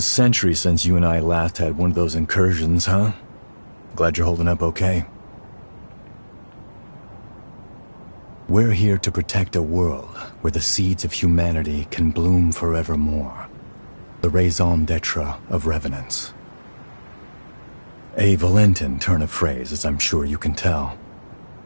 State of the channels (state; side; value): inverted; both; correlation -1.00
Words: since you and I last had one of those incursions, huh? Glad you're holding up okay. We're here to protect a world where the seeds of humanity can bloom forevermore. The raison d'etre of revenants. A Valentin turn of phrase, as I'm sure you can tell.